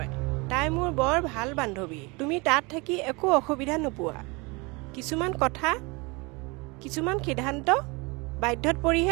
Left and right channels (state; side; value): quieter; left; 26.9 dB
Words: তাই মোৰ বৰ ভাল বান্ধৱী। তুমি তাত থাকি একো অসুবিধা নোপোৱা। কিছুমান কথা, কিছুমান সিদ্ধান্ত বাধ্যত